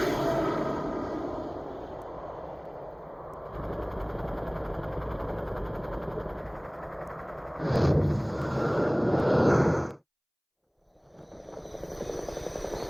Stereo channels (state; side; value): identical; both; correlation 1.00